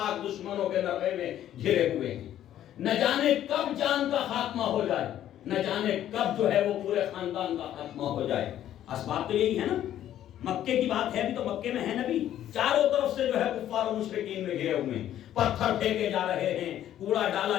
دشمنوں کے نرغے میں گھرے ہوئے ہیں. نہ جانے کب جان کا خاتمہ ہو جائے, نہ جانے کب جو ہے وہ پورے خاندان کا خاتمہ ہو جائے. اسباب تو یہی ہے نا. مکے کی بات ہے بھی تو مکے میں ہے نبی, چاروں طرف سے جو ہے کفار و مشرکین میں گھرے ہوئے ہیں, پتھر پھینکے جا رہے ہیں, کوڑا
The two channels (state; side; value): quieter; right; 11.7 dB